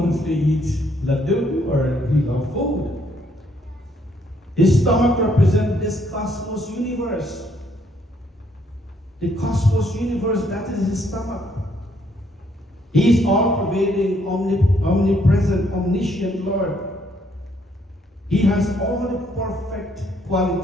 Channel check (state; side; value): normal; both; correlation 0.70